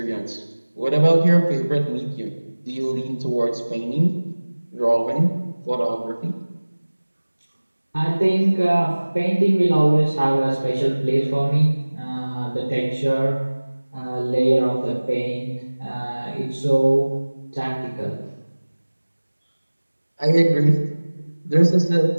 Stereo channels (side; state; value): both; inverted; correlation -1.00